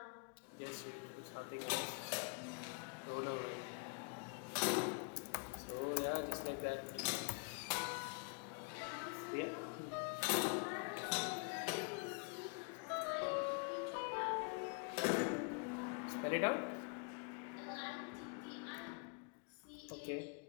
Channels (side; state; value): right; quieter; 38.3 dB